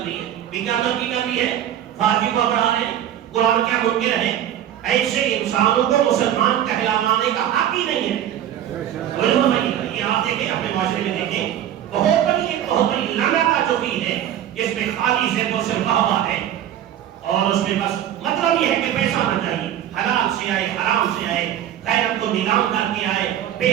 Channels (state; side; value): quieter; left; 11.0 dB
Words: لی ہے۔ بھی کیا ترقی کر لی ہے؟ فحاشی کو بڑھا رہے ہیں، قرآن کیا منکر ہے؟ ایسے انسانوں کو مسلمان کہلانے کا حق ہی نہیں ہے۔ یہ آپ دیکھیں اپنے معاشرے میں دیکھیں، بہت بڑی لعنت جو بھی ہے، جس میں خالی سے تو صرف واہ ہے، اور اس میں بس مطلب یہ ہے کہ پیسہ آنا چاہیے، حلال سے آئے، حرام سے آئے، غیرت کو نیلام کر کے آئے، بے